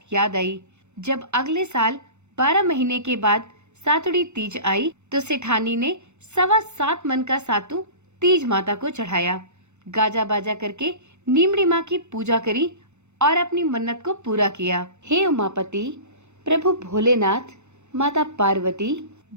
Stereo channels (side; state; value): left; late; 0.83 ms